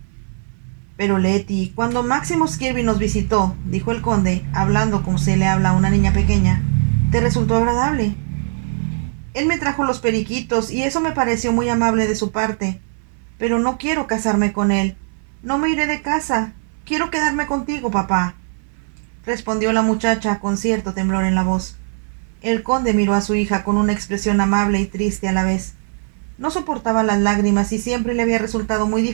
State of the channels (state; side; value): silent; left; 60 dB below the other